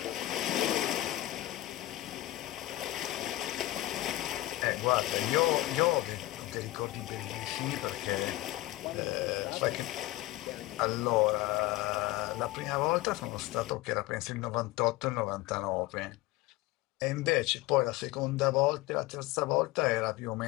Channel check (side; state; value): right; quieter; 17.7 dB